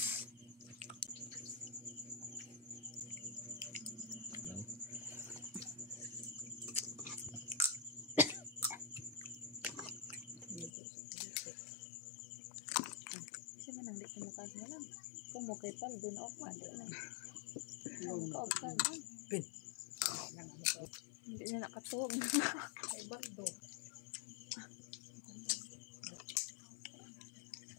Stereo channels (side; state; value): right; drops out; at 10.7 s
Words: Kasi manang di kumukas mo lang. Kumukay pa, dun ako mandi na. Kumukay pa. Pin. Hindi na nakatog. Ay, baldo.